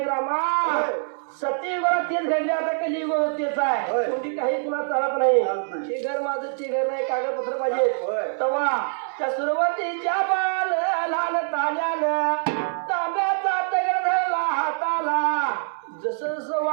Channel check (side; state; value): left; silent; digital silence